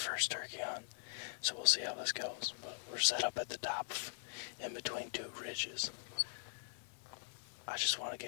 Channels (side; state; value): right; silent; digital silence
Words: turkey hunt, so we'll see how this goes. But we're set up at the top, in between 2 ridges. I just want to